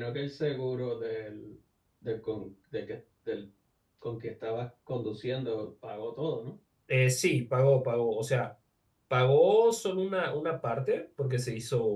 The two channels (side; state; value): both; identical; correlation 1.00